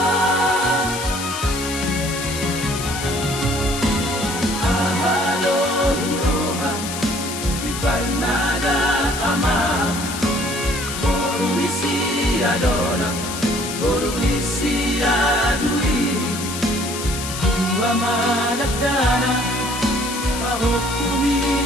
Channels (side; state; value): left; noise; hiss, 7 dB below the sound